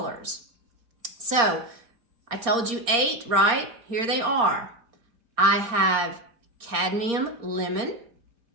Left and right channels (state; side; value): late; left; 4.3 ms